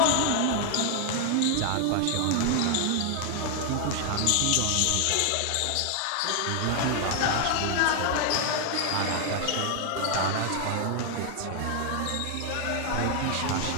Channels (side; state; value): both; different; correlation 0.00